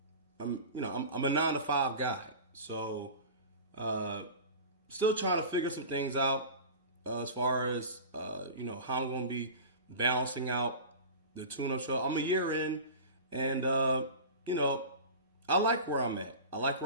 I'm a 9 to 5 guy, so uh, still trying to figure some things out as far as how I'm going to be balancing out the tune-up show. I'm a year in, and you know I like where I'm at. I like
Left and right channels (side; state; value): both; inverted; correlation -0.34